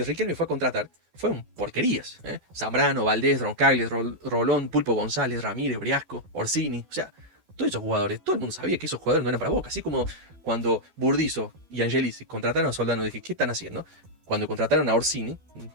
Riquelme fue a contratar fueron porquerías. Zambrano, Valdés, Roncaglia, Rolón, Pulpo González, Ramírez, Briasco, Orsini. O sea, todos esos jugadores, todo el mundo sabía que esos jugadores no eran para Boca. Así como cuando Burdizo y Angelici contrataron a Soldano, dije, ¿qué están haciendo? Cuando contrataron a Orsini,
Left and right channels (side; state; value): left; late; 12 ms